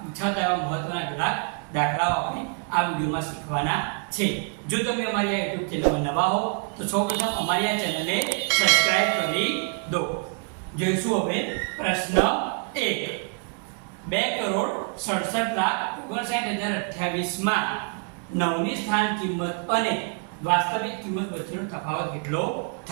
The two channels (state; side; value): quieter; left; 39.9 dB